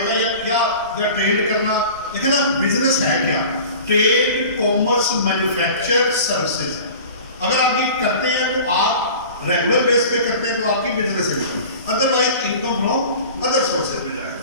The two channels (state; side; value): inverted; both; correlation -0.40